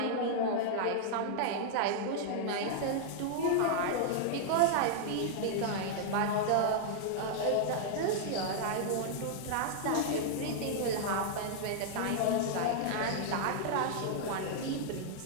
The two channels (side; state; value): both; different; correlation -0.01